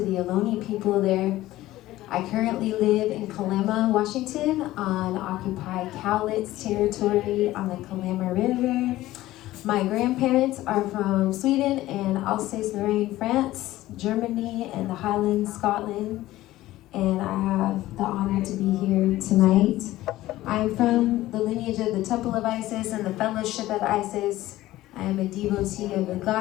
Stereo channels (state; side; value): quieter; right; 16.0 dB